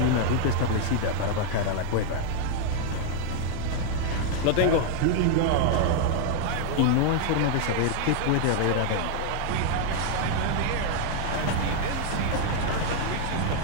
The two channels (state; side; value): different; both; correlation 0.00